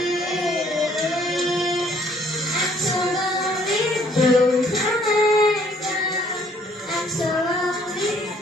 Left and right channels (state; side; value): normal; both; correlation 0.62